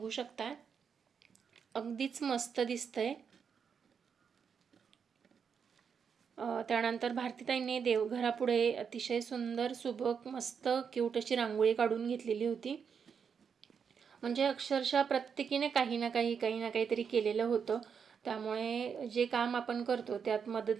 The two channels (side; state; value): left; quieter; 6.7 dB